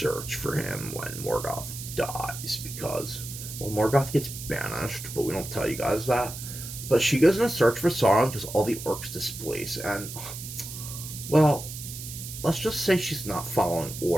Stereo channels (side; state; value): right; noise; hiss, 10 dB below the sound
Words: for him when Morgoth dies, because, well, Morgoth gets banished, but we don't tell you guys that. But she goes in a search for Sauron because all the orcs displace, and, well, let's just say she's not following